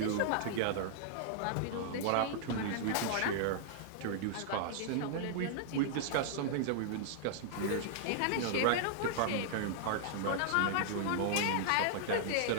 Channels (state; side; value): different; both; correlation -0.01